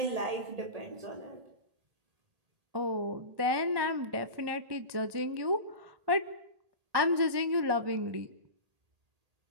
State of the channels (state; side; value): late; left; 1.2 ms